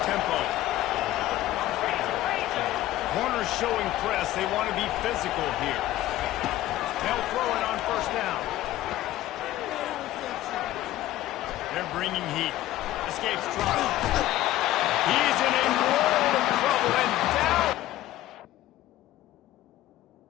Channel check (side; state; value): right; quieter; 14.8 dB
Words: tempo. Corners showing press. They want to be physical here. They'll throw it on 1st down. They're bringing heat. Escapes trouble. He's in a world of trouble and down.